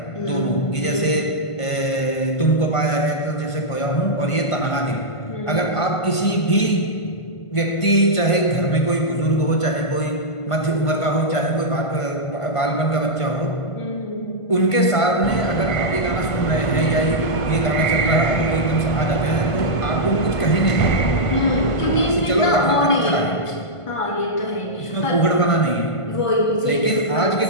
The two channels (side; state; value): right; late; 1.5 ms